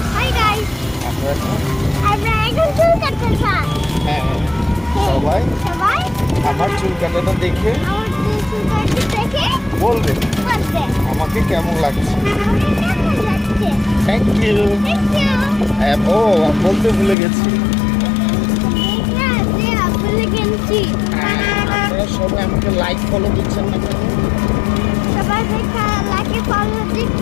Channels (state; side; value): drops out; right; at 17.2 s